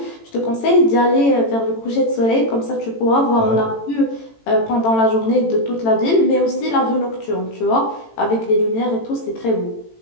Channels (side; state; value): right; late; 18 ms